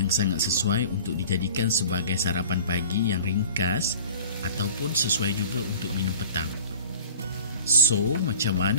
sangat sesuai untuk dijadikan sebagai sarapan pagi yang ringkas ataupun sesuai juga untuk minum petang. So, macam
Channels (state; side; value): inverted; both; correlation -0.42